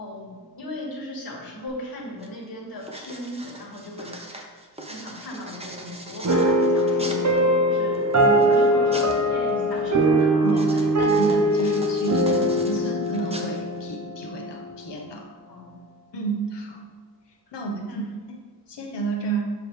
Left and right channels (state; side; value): normal; both; correlation 0.27